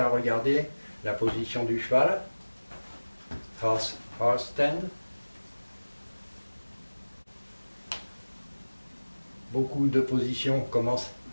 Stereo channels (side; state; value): both; inverted; correlation -1.00